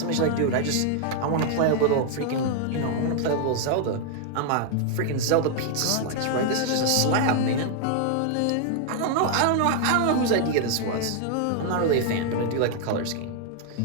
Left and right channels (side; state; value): both; different; correlation 0.00